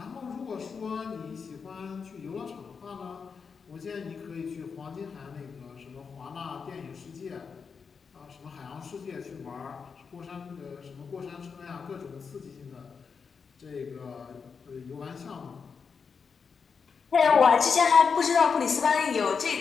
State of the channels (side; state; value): right; quieter; 5.7 dB